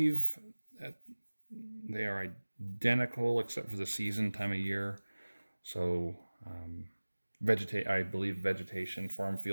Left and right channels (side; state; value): both; inverted; correlation -1.00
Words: that they are identical except for the season, time of year. So I believe vegetation, farm